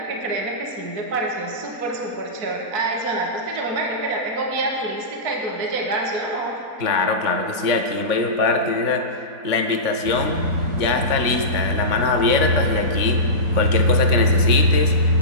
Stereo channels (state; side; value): late; left; 3.6 ms